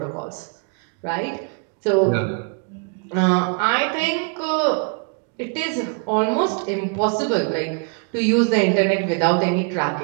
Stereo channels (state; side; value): quieter; left; 38.8 dB